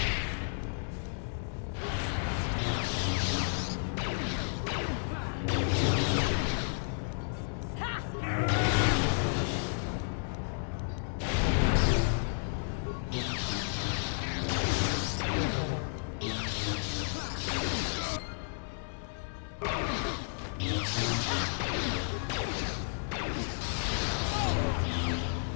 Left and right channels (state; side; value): silent; right; digital silence